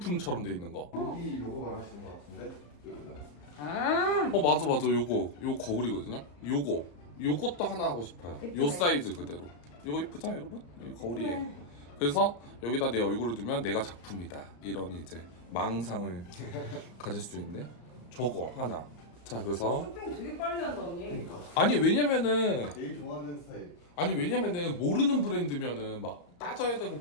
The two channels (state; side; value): late; right; 34 ms